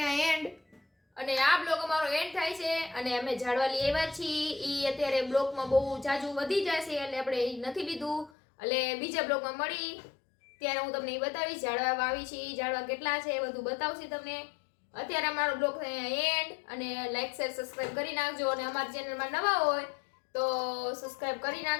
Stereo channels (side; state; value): right; drops out; at 8.3 s